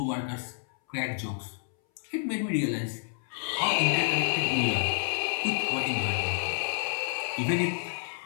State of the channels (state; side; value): silent; right; 58 dB below the other